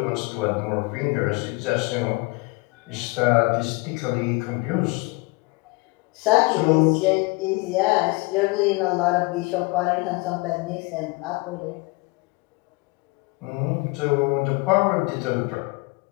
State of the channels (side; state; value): right; quieter; 25.9 dB